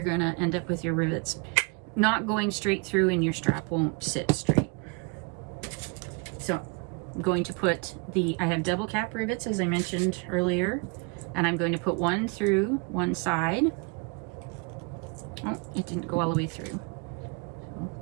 going to end up with your rivets not going straight through, and your strap won't sit straight. So I'm going to put I have double cap rivets, as I mentioned earlier, and I'm going to put one through one side. Oh, it didn't go all the way through. So I'll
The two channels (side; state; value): left; quieter; 31.0 dB